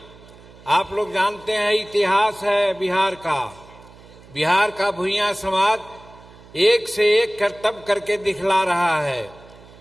आप लोग जानते हैं इतिहास है बिहार का। बिहार का भुइयां समाज एक से एक करतब करके दिखला रहा है।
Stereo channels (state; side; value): noise; right; hum, 22 dB below the sound